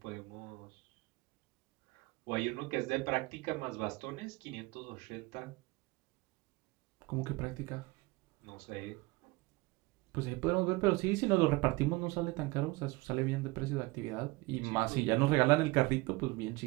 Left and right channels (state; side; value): quieter; left; 23.1 dB